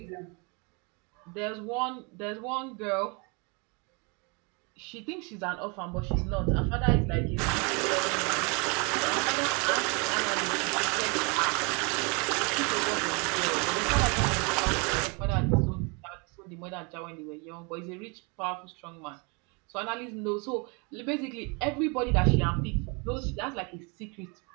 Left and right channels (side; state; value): left; quieter; 31.9 dB